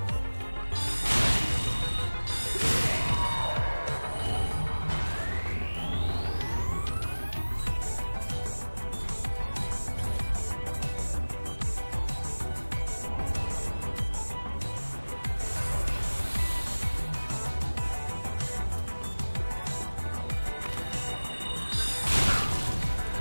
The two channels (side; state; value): both; inverted; correlation -1.00